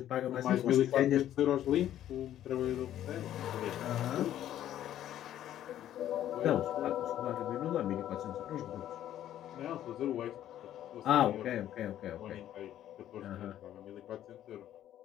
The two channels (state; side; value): quieter; right; 11.8 dB